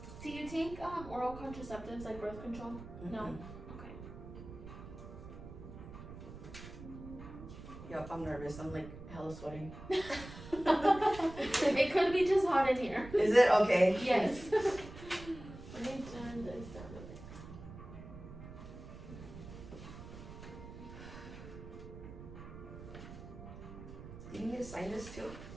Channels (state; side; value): noise; right; rumble, 13 dB below the sound